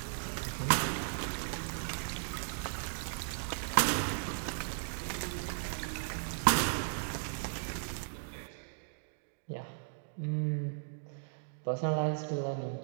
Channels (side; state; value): left; silent; digital silence